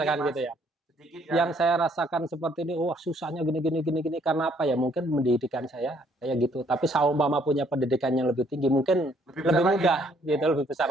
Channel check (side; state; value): both; normal; correlation 0.65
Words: gitu ya. Yang saya rasakan seperti ini, wah susahnya gini karena apa ya? Mungkin pendidikan saya kayak gitu. Tapi saumpama punya pendidikan yang lebih tinggi, mungkin lebih mudah, gitu, lebih besar